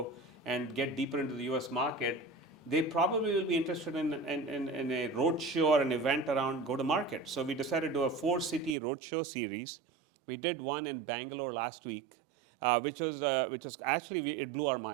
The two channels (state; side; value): drops out; left; at 8.8 s